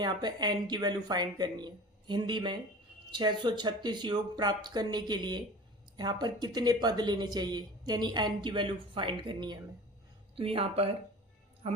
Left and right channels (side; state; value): both; normal; correlation 0.38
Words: यहाँ पे एन की वैल्यू फाइंड करनी है। हिंदी में 636 योग प्राप्त करने के लिए यहाँ पर कितने पद लेने चाहिए, यानी एन की वैल्यू फाइंड करनी है हमें। तो यहाँ पर